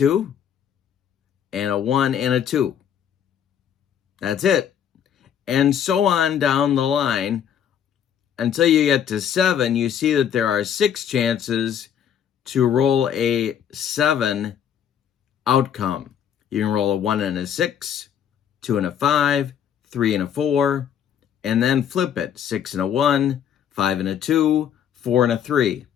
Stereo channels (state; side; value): quieter; right; 9.0 dB